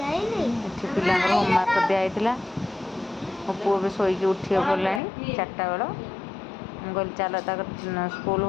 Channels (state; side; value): drops out; right; at 5.0 s